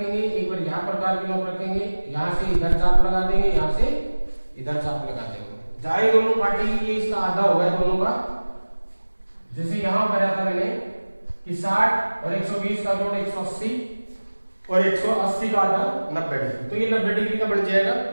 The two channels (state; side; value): inverted; both; correlation -1.00